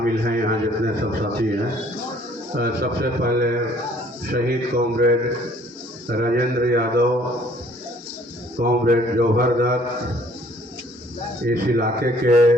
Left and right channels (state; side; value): normal; both; correlation 0.58